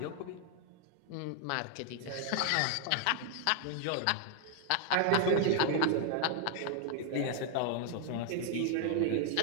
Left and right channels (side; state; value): both; different; correlation 0.00